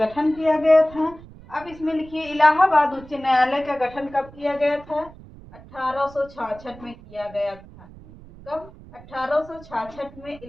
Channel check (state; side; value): noise; right; rumble, 20 dB below the sound